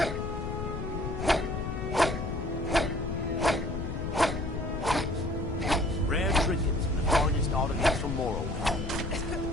Rare trinkets and the finest artifacts from Morrowind.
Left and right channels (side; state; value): left; noise; rumble, 4 dB below the sound